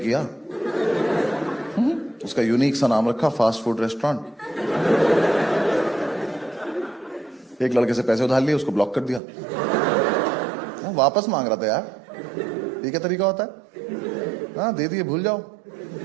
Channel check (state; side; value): drops out; left; at 9.2 s